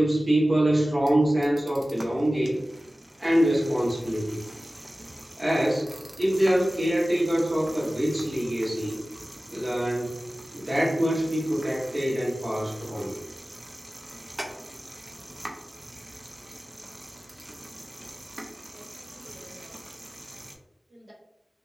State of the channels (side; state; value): both; normal; correlation 0.96